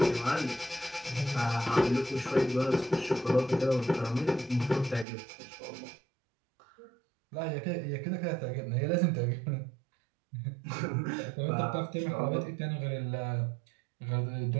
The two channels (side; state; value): left; drops out; at 5.1 s